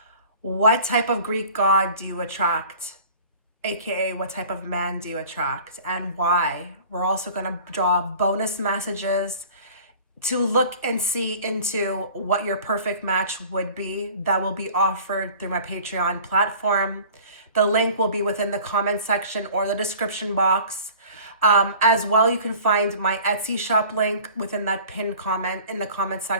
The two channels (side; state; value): both; inverted; correlation -0.45